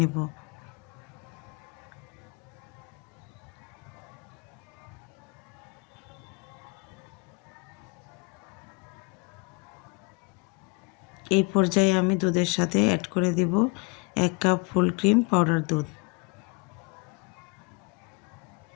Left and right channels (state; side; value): quieter; right; 28.9 dB